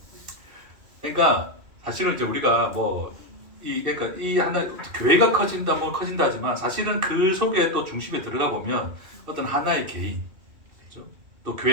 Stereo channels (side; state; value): left; late; 2.6 ms